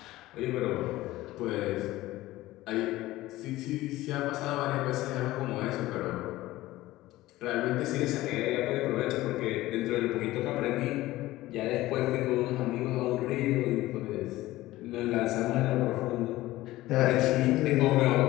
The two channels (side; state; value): right; quieter; 17.1 dB